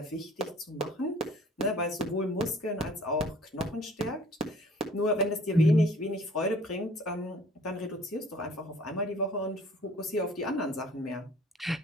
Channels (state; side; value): normal; both; correlation 0.53